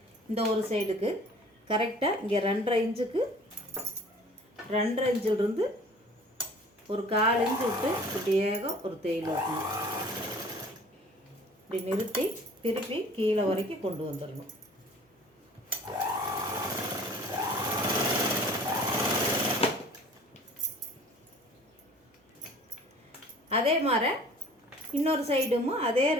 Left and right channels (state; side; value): normal; both; correlation 0.48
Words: இந்த ஒரு சைடுக்கு கரெக்டாக இங்கே 2.5 இன்ச்சுக்கு 2.5 இன்ச்சிலிருந்து ஒரு 1/4 இன்ச்சு விட்டு இப்படியே ஒரு தையல் வைக்கணும். இப்படி நிறுத்தி திருப்பி கீழே வரைக்கும் கொண்டு வந்துடணும். அதே மாதிரி இன்னொரு சைடும் அதே